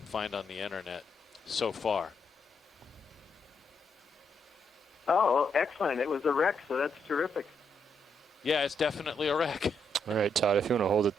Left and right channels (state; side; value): normal; both; correlation 0.78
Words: find on the internet so far. Oh, excellent. It was a wreck, so that's terrific. Yeah, it's definitely a wreck. All right, Todd, if you want to hold it